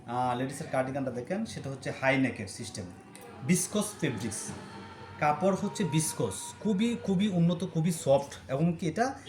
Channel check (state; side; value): identical; both; correlation 1.00